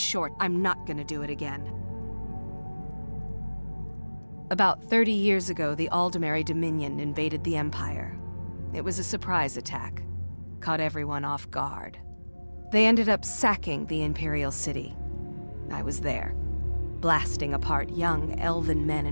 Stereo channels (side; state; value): both; inverted; correlation -1.00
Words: I'm not gonna do it again. About 30 years ago, the Aldemary Dominion invaded the Empire. It was a surprise attack. Caught everyone off guard. They ended up sacking the Imperial City. I was there, blasting apart young elven men